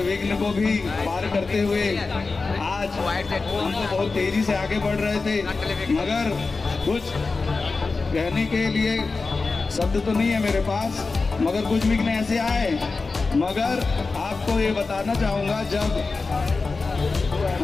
विघ्न को भी पार करते हुए आज हम तो बहुत तेजी से आगे बढ़ रहे थे, मगर कुछ कहने के लिए शब्द तो नहीं है मेरे पास, मगर कुछ विघ्न ऐसे आए। मगर आपको ये बताना चाहूँगा, जब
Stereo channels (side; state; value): right; quieter; 4.0 dB